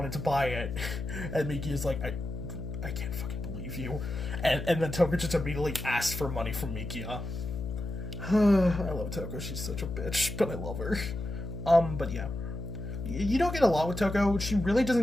to buy it. And Mikia's like, I can't fucking believe you. And then Toko just immediately asked for money from Mikia. I love Toko, she's such a bitch, but I love her. But yeah. You don't get a lot with Toko. She really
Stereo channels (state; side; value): noise; left; hum, 6 dB below the sound